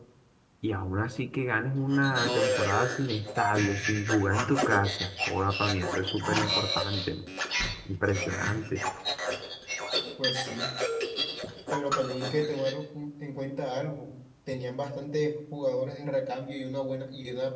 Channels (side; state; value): both; identical; correlation 1.00